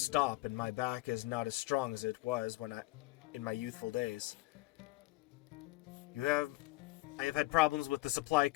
and my back is not as strong as it was in my youthful days. I have had problems with the supply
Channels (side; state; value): right; quieter; 20.1 dB